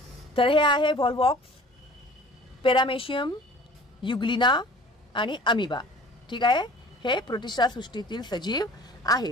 तर हे आहे व्हॉल्वॉक्स, पेरामेशियम, युग्लिना आणि अमिबा. ठीक आहे. हे प्रोटिस्टा सृष्टीतील सजीव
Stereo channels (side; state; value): both; normal; correlation 0.47